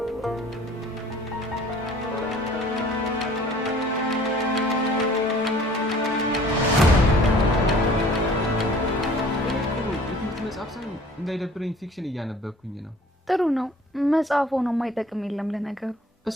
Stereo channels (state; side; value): normal; both; correlation 0.51